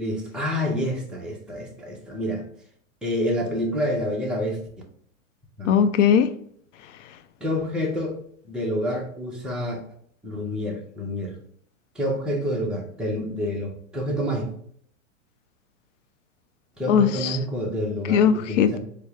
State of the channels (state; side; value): quieter; right; 3.6 dB